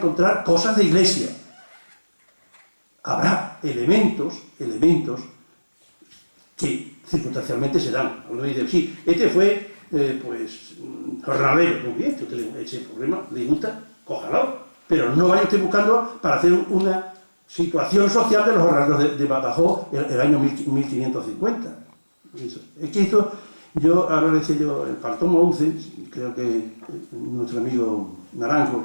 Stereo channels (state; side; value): inverted; both; correlation -1.00